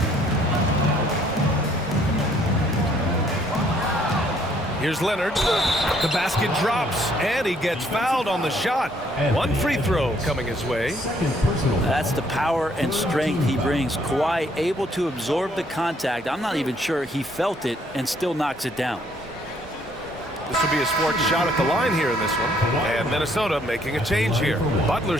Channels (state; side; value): normal; both; correlation 0.65